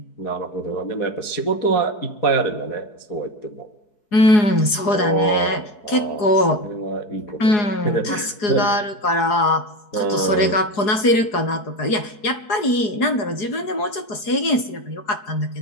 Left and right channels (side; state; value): right; late; 4.8 ms